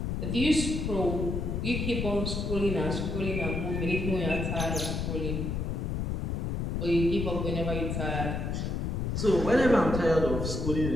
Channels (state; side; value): noise; left; rumble, 1 dB below the sound